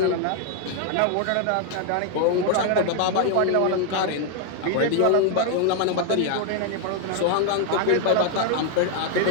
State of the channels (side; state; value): both; different; correlation 0.00